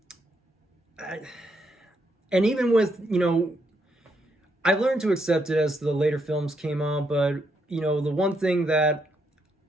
and even with, you know, I learned to accept it as the later films came on, but, you know, the one thing that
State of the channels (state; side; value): normal; both; correlation 0.77